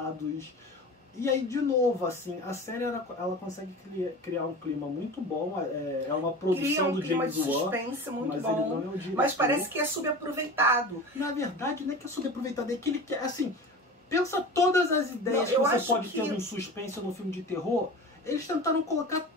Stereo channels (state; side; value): normal; both; correlation 0.33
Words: E aí, de novo, assim, a série ela consegue criar um clima muito bom. É uma produção do James Wan. Cria um clima de suspense muito mas bom. Ele não é o diretor. Mas parece que é subaproveitado. Na verdade, não é que é subaproveitado, é que ele quer, assim, pensa todas as ideias que você pode ter num suspense ou num filme de terror. Eles tentaram colocar